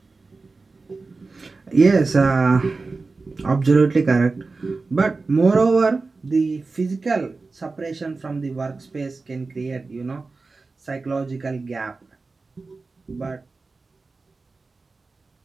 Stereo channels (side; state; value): left; quieter; 3.9 dB